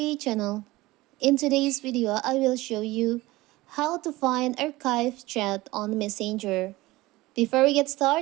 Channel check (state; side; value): quieter; left; 19.3 dB